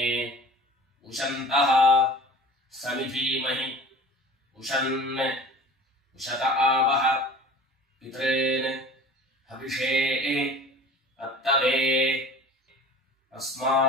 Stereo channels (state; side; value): normal; both; correlation 0.42